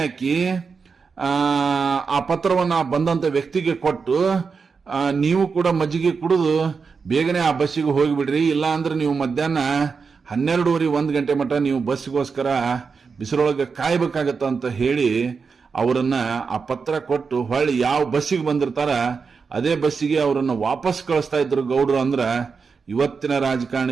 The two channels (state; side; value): quieter; left; 5.2 dB